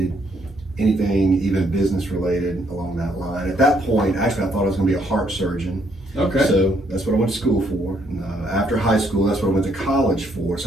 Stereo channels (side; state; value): both; normal; correlation 0.71